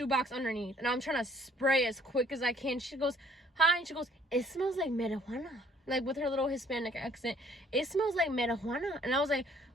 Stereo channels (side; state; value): both; normal; correlation 0.60